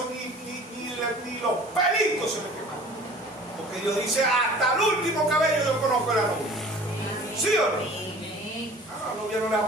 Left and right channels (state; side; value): normal; both; correlation 0.46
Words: ni los pelitos se le quemaron. Porque Dios dice, hasta el último cabello yo conozco a la novia. ¿Sí o no? A la novia no le va